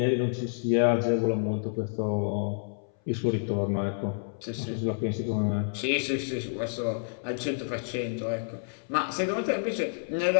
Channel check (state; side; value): silent; right; 59 dB below the other